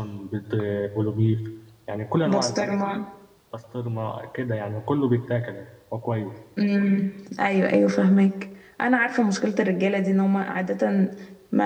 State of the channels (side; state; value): both; identical; correlation 1.00